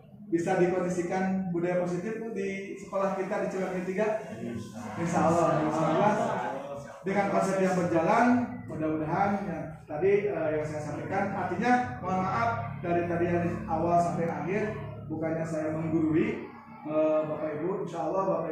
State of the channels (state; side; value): identical; both; correlation 1.00